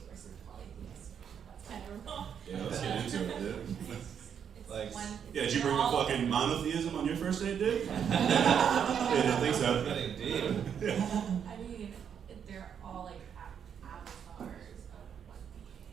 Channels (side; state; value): left; quieter; 8.0 dB